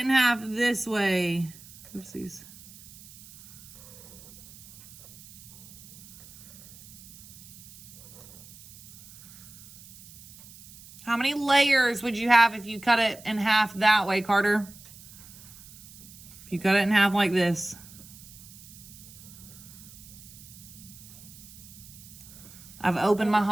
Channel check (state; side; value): noise; right; hiss, 19 dB below the sound